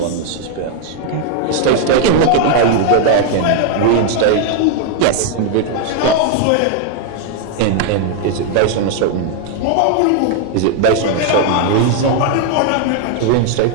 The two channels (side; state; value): both; different; correlation 0.00